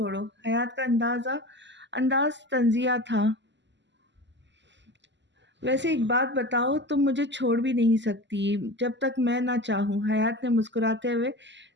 حیات کا انداز طنزیہ تھا۔ ویسے ایک بات بتاؤ، تم مجھے چھوڑ بھی نہیں سکتی جب تک میں نہ چاہوں۔ حیات نے مسکراتے ہوئے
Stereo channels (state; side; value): late; left; 0.53 ms